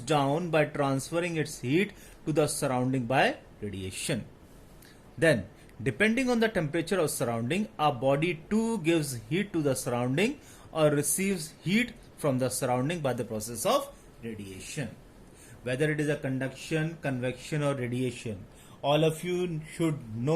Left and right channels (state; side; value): identical; both; correlation 1.00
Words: by transferring its heat to the surrounding by radiation. Then, depending on the temperature of surrounding, our body too gives heat to the surrounding or receives heat from the surrounding by the process of radiation. Whether it is a conduction, convection or radiation, all of you should